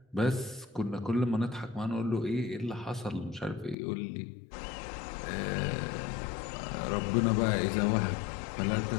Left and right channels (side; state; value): right; drops out; at 3.8 s